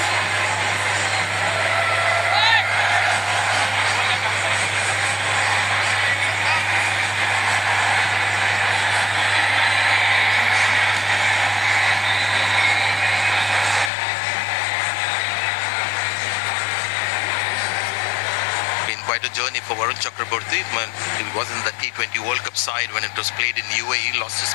Quite a journey for Varun Chakraborty. He was in the T20 World Cup side when it was played in UAE. Lost his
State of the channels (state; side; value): drops out; right; at 13.9 s